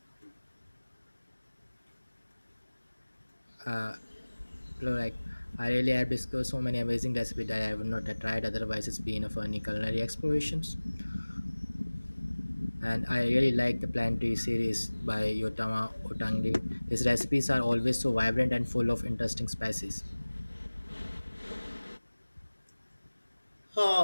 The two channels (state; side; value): inverted; both; correlation -1.00